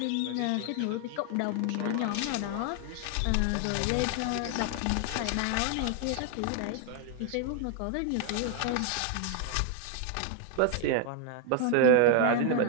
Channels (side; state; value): both; different; correlation 0.00